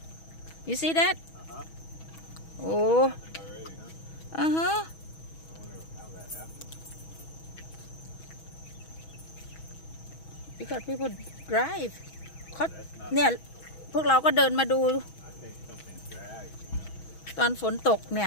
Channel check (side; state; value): right; late; 6.2 ms